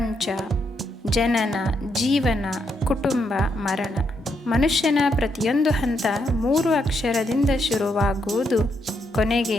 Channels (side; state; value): both; normal; correlation 0.78